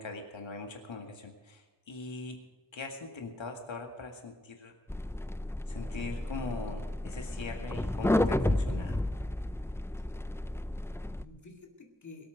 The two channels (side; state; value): both; normal; correlation 0.83